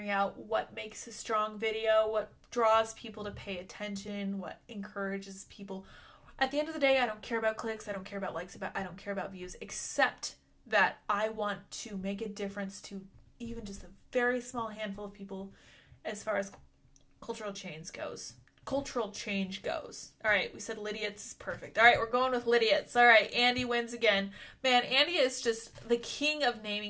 out what makes a strong video, what draws people to pay attention, what encourages people. At the end of the day, I don't care about clicks, I don't care about likes, I don't care about views, except that I want to make a difference to even just a very small handful of people as far as cultural change goes. All right, we said Lydia's is perfect. All right, we're going with Lydia's. All right, Andy wins again. Man, Andy is just the king of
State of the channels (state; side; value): identical; both; correlation 1.00